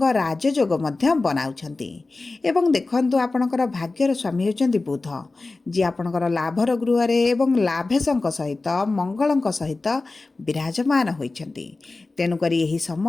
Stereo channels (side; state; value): right; quieter; 3.4 dB